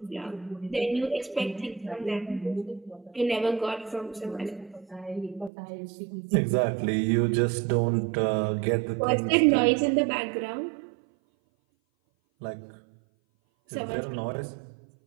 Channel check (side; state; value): left; drops out; at 5.5 s